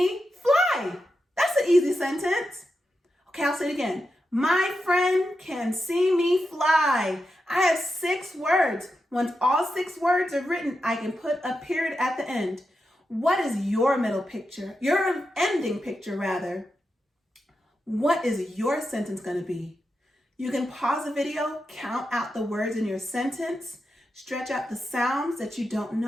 fly. That's an easy sentence. Okay, I'll say it again. My friend can see me fly. I have 6 words. Once all 6 words are written, I can put a period at the end. What is your middle picture? Your ending picture, rather. What is your sentence going to be? You can pause the video, count out the words in your sentence, Stretch out the sounds that you don't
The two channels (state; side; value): normal; both; correlation 0.88